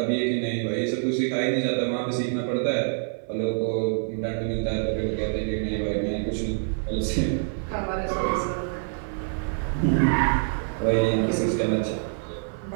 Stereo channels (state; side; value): silent; left; 56 dB below the other